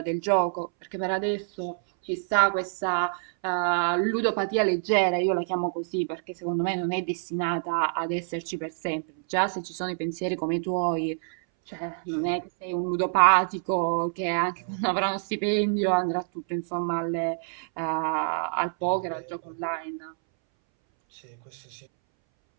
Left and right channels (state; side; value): silent; left; 60 dB below the other